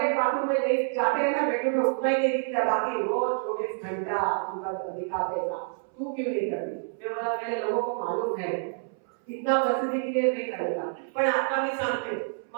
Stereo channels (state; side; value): silent; left; 59 dB below the other